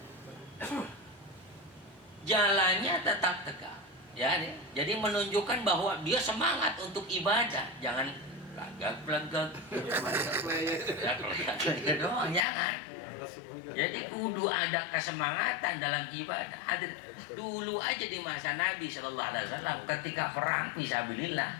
Jalannya tetap tegak. Ya, jadi menunjukkan bahwa dia semangat untuk ibadah, jangan lagak-lagak. Ya doang, jangan. Jadi kudu ada kesemangatan dalam ibadah. Hadir dulu aja di masa Nabi Shallallahu Alaihi Wasallam ketika perang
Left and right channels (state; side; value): drops out; right; at 12.4 s